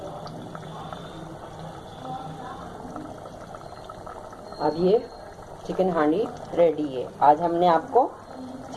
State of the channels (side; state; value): both; identical; correlation 1.00